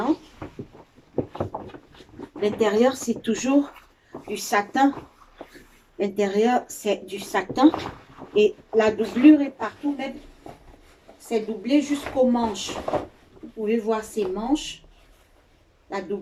L'intérieur, c'est toujours du satin. L'intérieur, c'est du satin. Et la doublure est partout, même. C'est doublé jusqu'aux manches. Vous pouvez voir ces manches. La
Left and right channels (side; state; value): both; identical; correlation 1.00